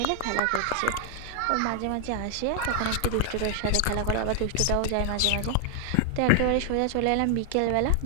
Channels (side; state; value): both; different; correlation 0.00